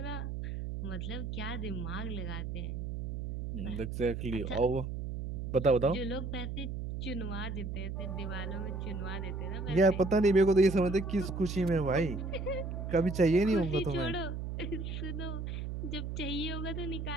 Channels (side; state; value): right; noise; hum, 5 dB below the sound